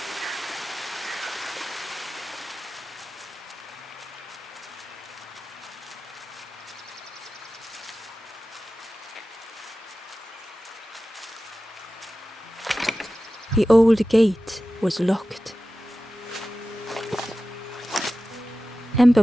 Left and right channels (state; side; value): normal; both; correlation 0.95